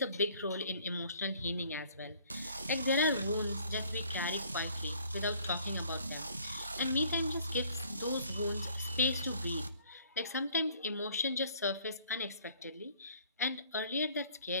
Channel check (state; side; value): inverted; both; correlation -0.58